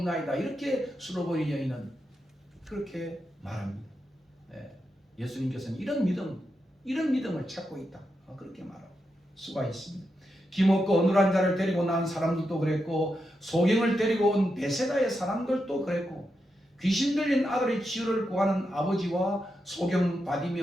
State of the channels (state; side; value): normal; both; correlation 0.86